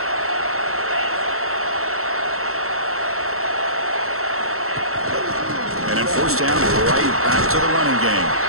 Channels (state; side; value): late; left; 0.63 ms